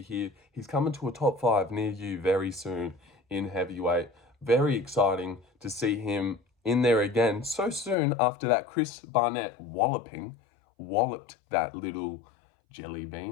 here. He's coming to a top 5 near you very soon in heavyweight. Very exciting to see him in there again so soon after that Chris Barnett walloped that little jelly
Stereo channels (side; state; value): right; drops out; at 8.0 s